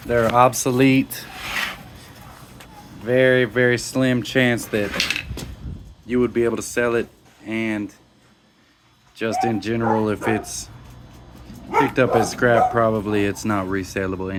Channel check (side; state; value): both; identical; correlation 1.00